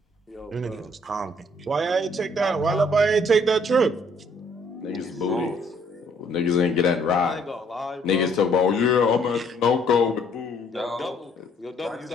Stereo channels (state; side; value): normal; both; correlation 0.64